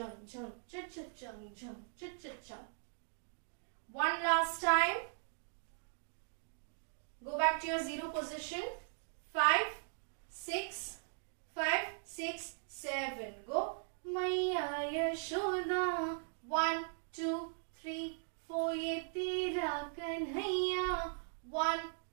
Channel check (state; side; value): silent; left; digital silence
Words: jhang cha cha chang, jhang cha cha chang. One last time. Go back to your 0 position. 5, 6, 5, 6, 7. Go. Maiya Yashoda. 1, 2, 3, 4. Ye tera kanhaiya. 1,